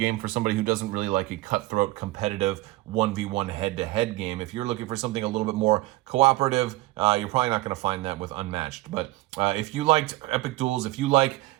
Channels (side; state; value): left; quieter; 18.9 dB